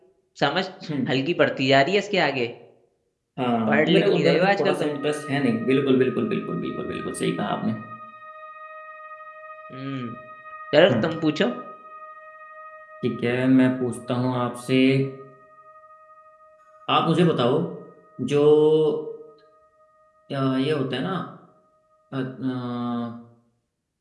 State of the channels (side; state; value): both; identical; correlation 1.00